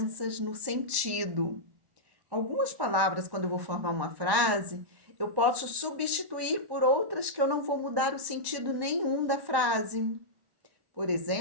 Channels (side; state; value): left; late; 1.1 ms